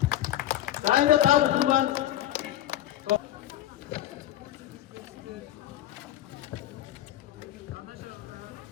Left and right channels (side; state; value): right; quieter; 13.0 dB